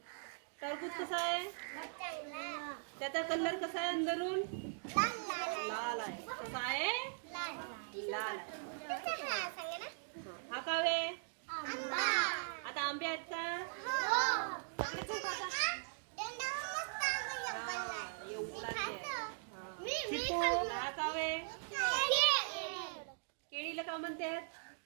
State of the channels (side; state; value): left; silent; digital silence